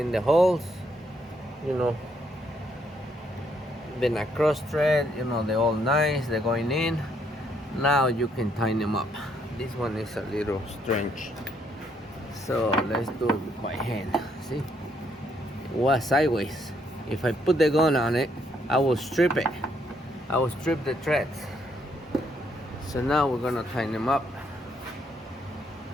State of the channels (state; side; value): normal; both; correlation 0.72